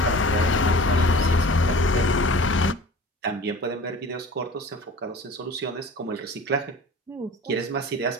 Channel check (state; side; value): normal; both; correlation 0.41